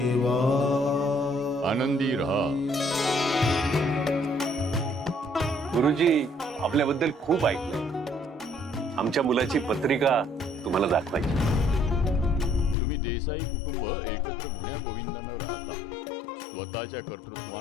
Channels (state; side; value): drops out; right; at 12.8 s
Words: आनंदी रहा। गुरुजी, आपल्याबद्दल खूप ऐकलंय. आमच्या मुलाची पत्रिका तुम्हाला दाखवायची. तुम्ही देसाई कुटुंब एकत्र गुण्या गोविंदानं राहता, स्वतःच्या